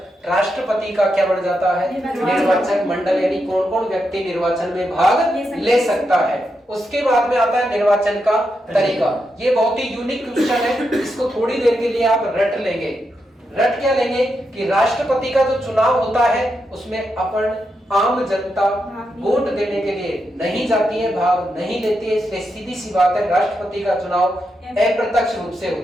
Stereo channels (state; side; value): normal; both; correlation 0.85